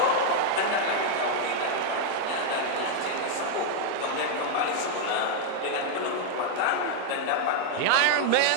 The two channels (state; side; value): different; both; correlation 0.00